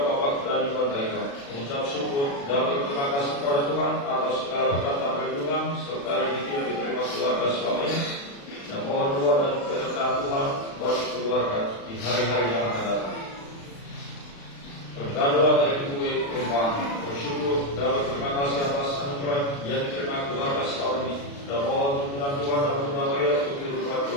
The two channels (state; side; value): late; right; 36 ms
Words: Bapak dari Pantaika, mengucap syukur dan berterima kasih kepada Tuhan atas segala berkat dan perlindungan serta rezeki yang diterima keluarga selama ini, dan mohon doa dan penyertaan Tuhan bagi keluarga di hari-hari yang akan datang. Permintaan doa dari Ibu Irfan, bersyukur dan berterima kasih atas anugerah yang diterima keluarga selama ini, dan mohon dukungan Tuhan dan Bunda Maria untuk kehidupan